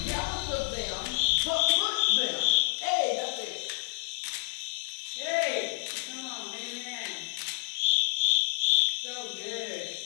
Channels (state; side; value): silent; right; digital silence